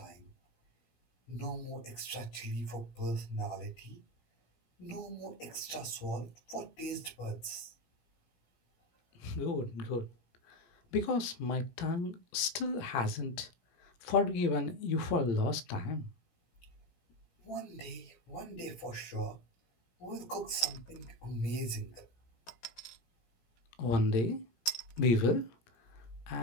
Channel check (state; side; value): late; right; 17 ms